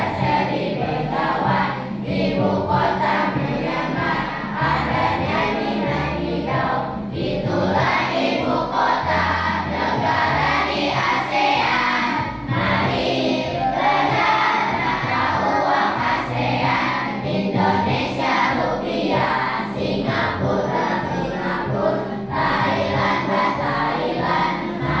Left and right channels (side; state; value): both; identical; correlation 1.00